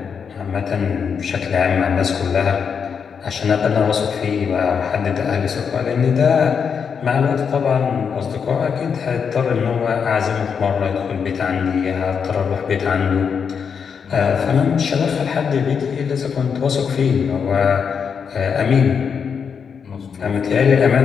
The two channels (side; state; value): right; quieter; 6.5 dB